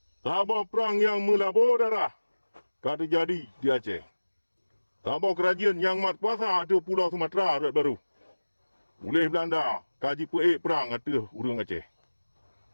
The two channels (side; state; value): both; inverted; correlation -1.00